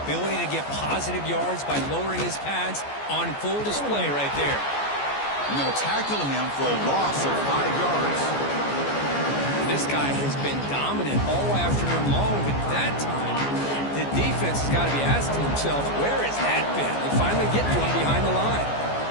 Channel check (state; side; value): late; right; 14 ms